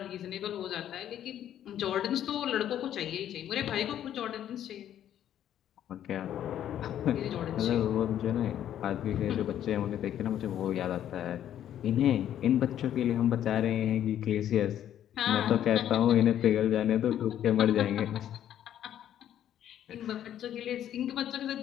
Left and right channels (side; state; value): right; quieter; 10.8 dB